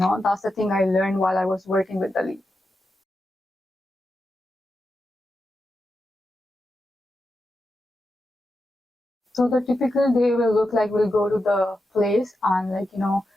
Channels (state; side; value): normal; both; correlation 0.89